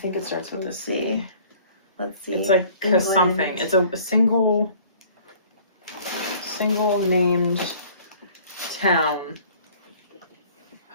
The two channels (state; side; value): inverted; both; correlation -0.52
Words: it starts with a C. Let's see. It's like something. It's a single named town.